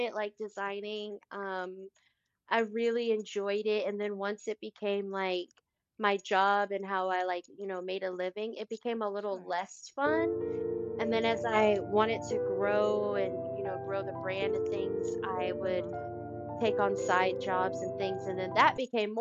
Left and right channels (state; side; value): identical; both; correlation 1.00